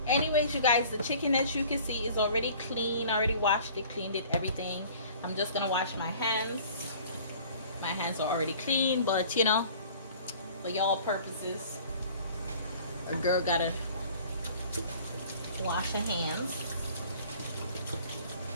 Anyways, you guys, the chicken, as you can see, is already clean. I already washed it, cleaned it, everything. I'm just gonna wash my hands. My hands are already clean, but you know, for y'all purposes, a girl gotta wash her hands.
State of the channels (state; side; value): inverted; both; correlation -0.49